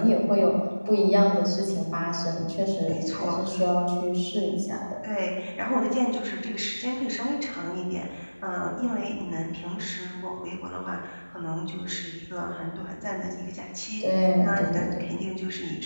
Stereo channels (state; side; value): inverted; both; correlation -1.00